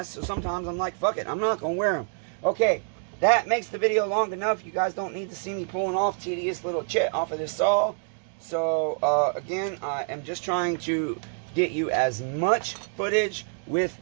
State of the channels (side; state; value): left; silent; digital silence